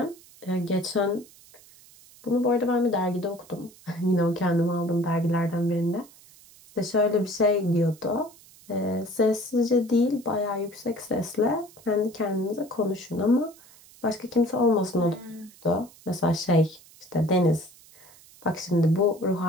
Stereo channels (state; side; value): noise; right; hiss, 24 dB below the sound